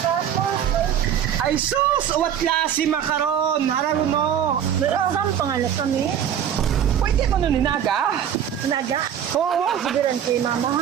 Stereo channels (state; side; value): quieter; left; 9.3 dB